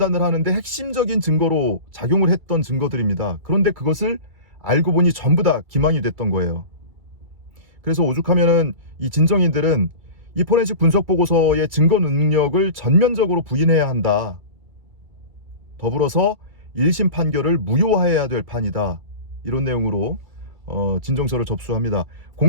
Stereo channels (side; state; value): left; late; 2.3 ms